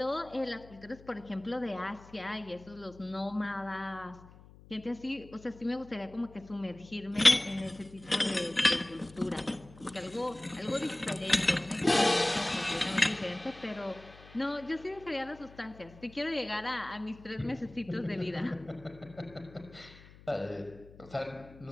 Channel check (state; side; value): noise; left; hum, 21 dB below the sound